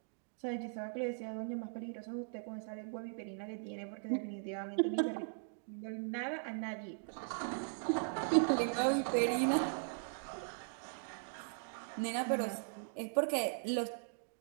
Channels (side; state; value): left; silent; digital silence